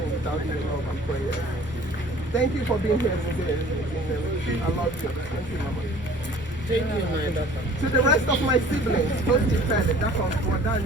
without your love and prayer. Thank you for being here today. I love you. Thank you, Mama. Thank you, my. To the rest of my siblings, both defended, that's on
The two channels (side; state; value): both; normal; correlation 0.50